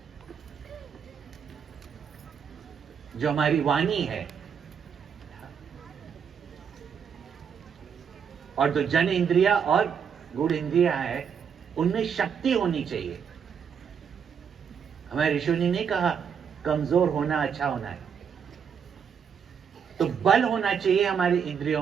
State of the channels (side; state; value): left; quieter; 7.2 dB